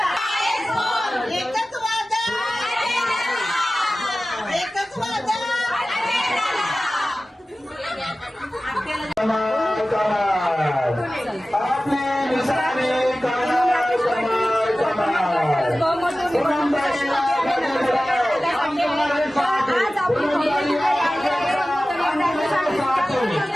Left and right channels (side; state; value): both; normal; correlation 0.96